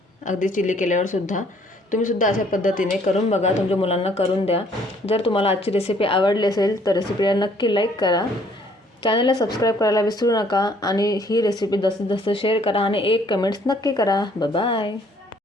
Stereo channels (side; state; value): both; normal; correlation 0.62